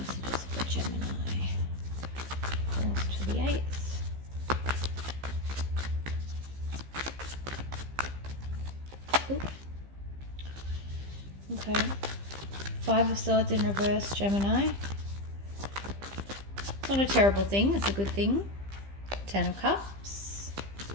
for Gemini. 4th to the 8th. Ooh. Okay. 5 of Swords in reverse, Gemini. It's not a terrible thing. It's a good thing. 10 of Cups.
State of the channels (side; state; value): left; late; 15 ms